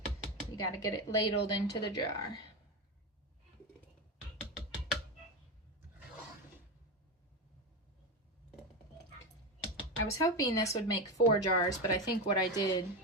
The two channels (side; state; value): both; normal; correlation 0.16